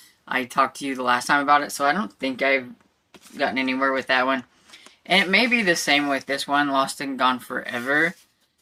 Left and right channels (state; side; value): identical; both; correlation 1.00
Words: I talked to you the last time about it, so I don't think I've gotten anywhere with that one. And it may be the same with this one, Lost and Gone Forever.